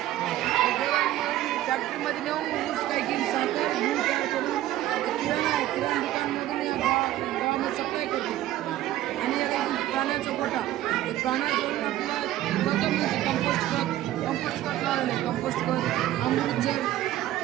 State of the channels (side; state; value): left; quieter; 14.1 dB